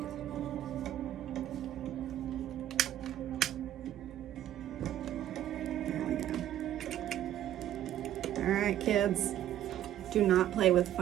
There we go. All right, kids. Do not play with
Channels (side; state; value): left; quieter; 12.0 dB